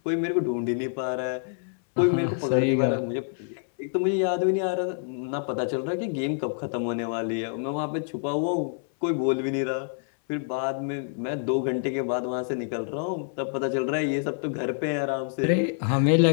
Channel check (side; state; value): right; silent; 60 dB below the other